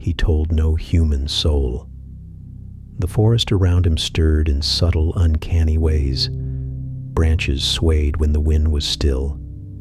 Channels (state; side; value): identical; both; correlation 1.00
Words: told no human soul. The forest around him stirred in subtle, uncanny ways. Branches swayed when the wind was still.